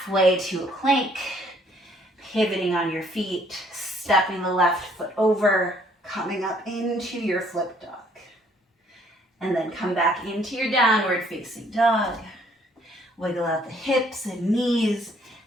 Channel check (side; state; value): both; normal; correlation 0.63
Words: to a plank, pivoting on your feet, stepping the left foot over, coming up into your flip dog. And then come back into your downward facing dog. Wiggle out the hips and knees,